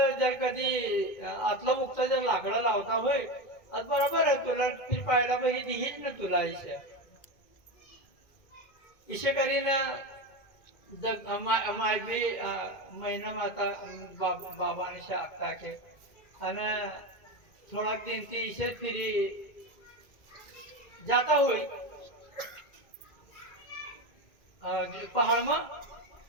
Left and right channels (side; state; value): right; late; 2.1 ms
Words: जर कधी आतला मुक्त जर लाकडा लावता होय आज बरोबर आहे तुला ती पाहायला पाहिजे दिहीच ना तुला इशे करीन मायबी महिना माता बाबाने शाखता के आणि थोडा दिन ती इशे फिरी जाता होई पहाड मग